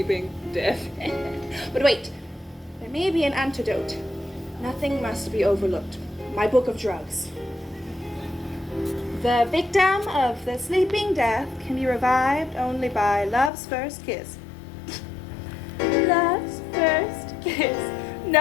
death. But wait, there may be an antidote. Nothing must be overlooked. My book of drugs. The victim of the sleeping death can be revived only by love's first kiss. Love's first kiss.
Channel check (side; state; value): right; drops out; at 13.5 s